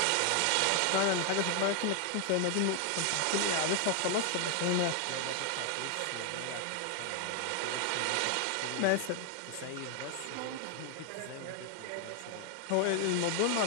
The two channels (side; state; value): both; different; correlation 0.00